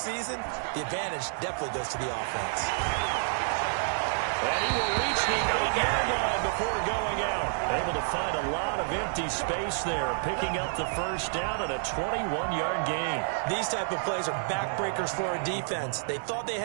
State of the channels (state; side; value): silent; left; digital silence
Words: the advantage definitely goes to the offense. And he will reach the 8-yard line before going out. Able to find a lot of empty space there, picking up the 1st down and a 21-yard gain. These type of plays are backbreakers for a defense. They thought they